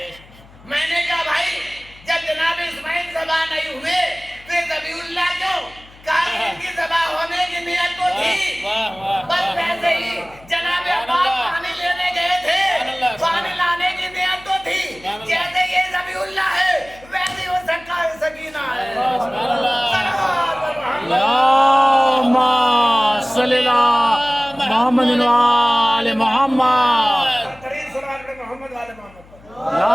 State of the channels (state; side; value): noise; left; hum, 24 dB below the sound